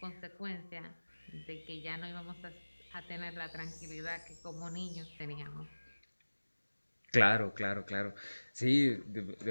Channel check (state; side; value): inverted; both; correlation -1.00